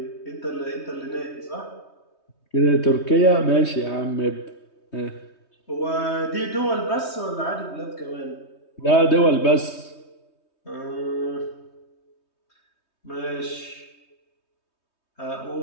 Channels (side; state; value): right; late; 3.2 ms